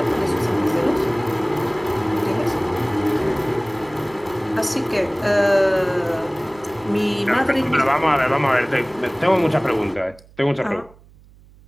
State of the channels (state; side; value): noise; right; hum, 26 dB below the sound